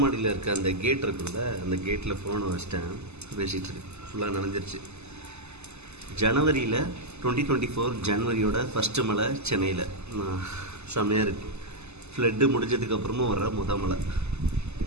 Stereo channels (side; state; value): left; late; 0.80 ms